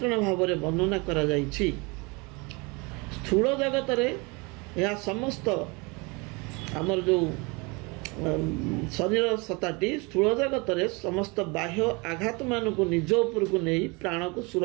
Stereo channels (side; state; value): left; quieter; 27.9 dB